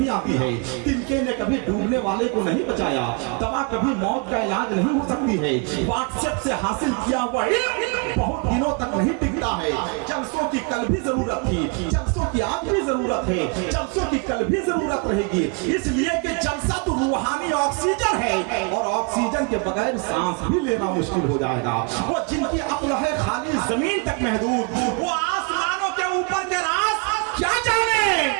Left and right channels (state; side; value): quieter; left; 33.2 dB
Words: आती है। तिनके ने कभी डूबने वाले को नहीं बचाया, दवा कभी मौत का इलाज नहीं हो सकती है। व्हाट्सएप से हासिल किया हुआ इल्म बहुत दिनों तक नहीं टिकता है। जलसों की कल भी जरूरत थी, जलसों की आज भी जरूरत है, जलसों की कल भी जरूरत रहेगी, इसलिए कि जलसा तो रूहानी ऑक्सीजन है, और ऑक्सीजन के बगैर सांस भी लेना मुश्किल हो जाएगा। वो जिनकी अक्ल है खाली जमीन तक महदूद, वो आसमानों के ऊपर के राज क्या जाने,